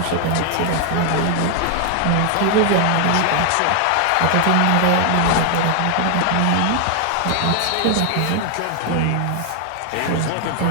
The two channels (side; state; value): both; different; correlation 0.00